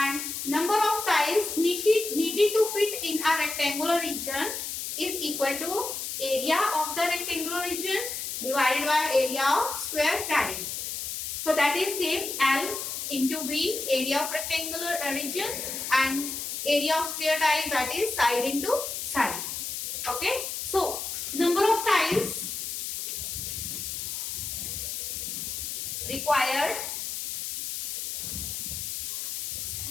number of tiles needed to fit in a rectangular region is equal to area of the rectangular region divided by area of square tile. So that is same, L into B, area of rectangular region, and area of square tile, that is side into side. Okay, so number of tiles required,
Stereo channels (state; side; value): noise; left; hiss, 5 dB below the sound